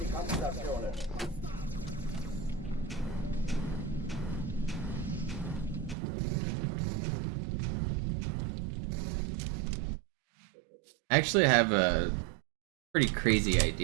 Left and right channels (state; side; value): drops out; left; at 6.0 s